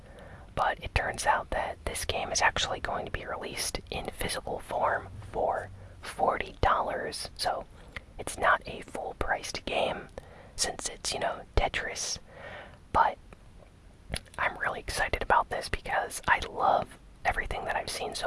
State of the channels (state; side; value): identical; both; correlation 1.00